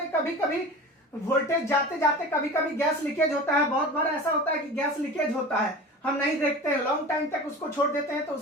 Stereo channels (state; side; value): normal; both; correlation 0.35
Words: कभी कभी वोल्टेज जाते जाते कभी कभी गैस लीकेज होता है। बहुत बार ऐसा होता है कि गैस लीकेज होता है, हम नहीं देखते हैं, लॉन्ग टाइम तक उसको छोड़ देते हैं तो